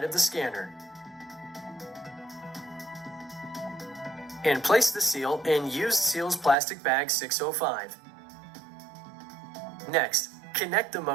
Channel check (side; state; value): left; drops out; at 6.6 s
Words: of the scanner. And place the seal in used seals plastic bag 605. Next, connect the